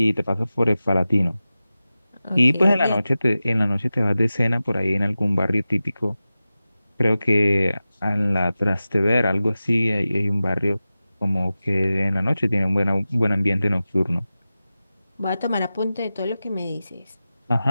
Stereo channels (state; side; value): inverted; both; correlation -0.95